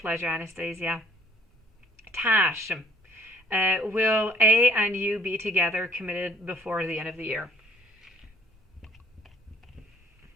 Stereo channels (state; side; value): normal; both; correlation 0.60